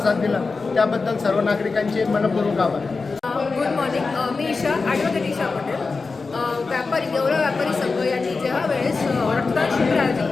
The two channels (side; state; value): right; quieter; 4.2 dB